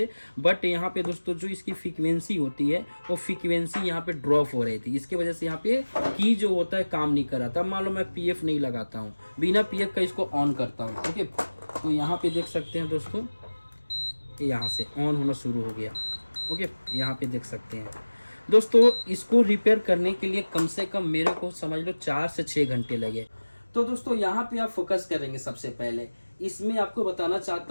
बट यहाँ पे दोस्तों जो इसकी फ्रीक्वेंसी होती है वो फ्रीक्वेंसी यहाँ पे ड्रॉप हो रही थी। इसकी वजह से यहाँ पे की जो होता है काम नहीं कर रहा था। मान लो मैं पीएफ नहीं लगाता हूँ, बिना पीएफ का इसको ऑन करता हूँ। ओके, तो यहाँ पे देख सकते हैं दोस्तों यहाँ से ऑन होना शुरू हो गया। ओके, यहाँ पे देख सकते हैं दोस्तों। इसको रिपेयर करने के लिए कम से कम मेरे को समझ लो 4 से 6 घंटे लगे। तो दोस्तों यहाँ पे आप फोकस करेंगे। सबसे पहले इसमें आपको बताना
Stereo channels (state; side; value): inverted; both; correlation -1.00